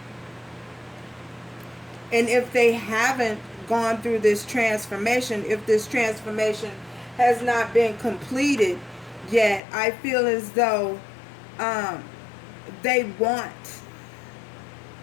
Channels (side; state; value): right; drops out; at 9.6 s